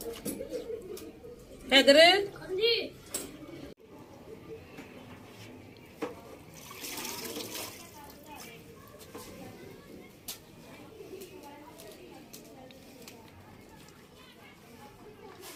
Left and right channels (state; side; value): identical; both; correlation 1.00